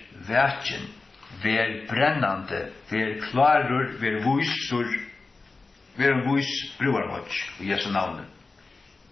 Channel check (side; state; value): right; quieter; 3.8 dB